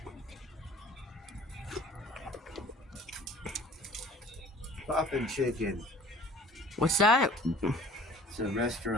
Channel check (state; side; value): normal; both; correlation 0.48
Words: Poppin' Chicken. What's that? It's a